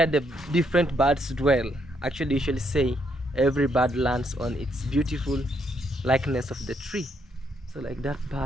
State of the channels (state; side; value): normal; both; correlation 0.74